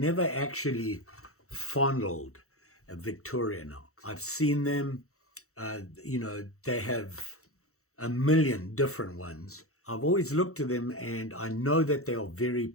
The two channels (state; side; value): late; right; 0.64 ms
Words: actually fondled a Victorinox. I've seen them. They have a million different ones. I've always looked at them and I know that they are very